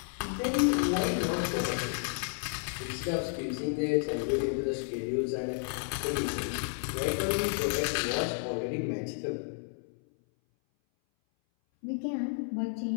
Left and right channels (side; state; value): right; silent; 57 dB below the other